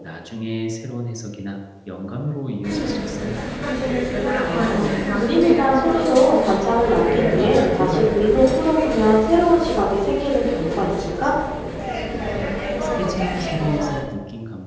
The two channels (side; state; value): both; identical; correlation 1.00